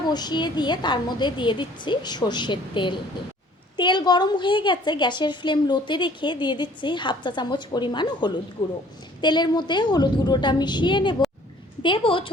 বসিয়ে দিয়ে তার মধ্যে দিয়ে দিচ্ছি সর্ষের তেল। তেল গরম হয়ে গেছে। গ্যাসের ফ্লেম লোতে রেখে দিয়ে দিচ্ছি হাফ চা চামচ পরিমাণ হলুদ গুঁড়ো। তেলের মধ্যে হলুদ গুঁড়োটা মিশিয়ে দেব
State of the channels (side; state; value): both; normal; correlation 0.55